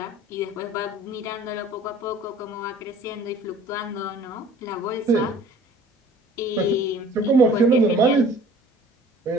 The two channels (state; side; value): normal; both; correlation 0.49